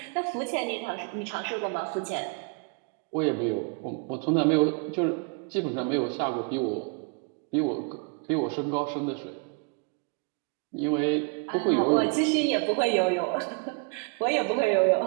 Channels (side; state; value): left; quieter; 35.3 dB